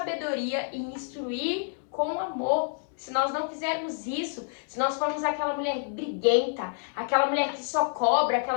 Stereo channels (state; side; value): silent; right; 59 dB below the other